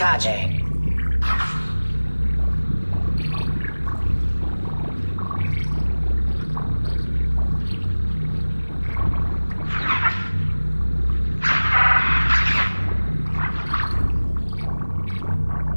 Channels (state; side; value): inverted; both; correlation -1.00